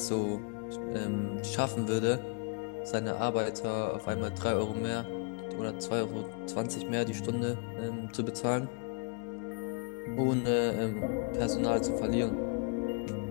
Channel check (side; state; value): right; quieter; 33.8 dB